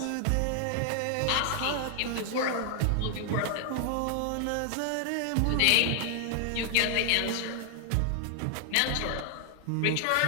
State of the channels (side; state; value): both; different; correlation 0.00